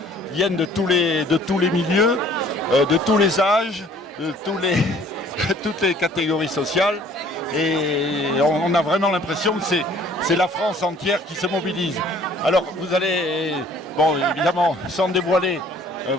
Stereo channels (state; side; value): normal; both; correlation 0.55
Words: viennent de tous les milieux, de tous les âges, de toutes les catégories sociales, et on a vraiment l'impression que c'est la France entière qui se mobilise. Alors vous allez, bon évidemment, sans dévoiler